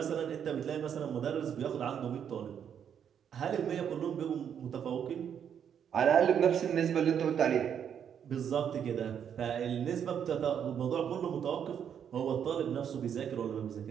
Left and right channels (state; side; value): quieter; left; 8.4 dB